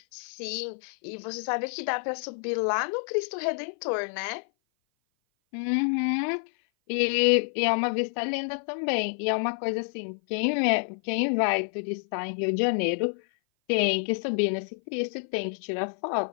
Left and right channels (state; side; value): silent; right; 56 dB below the other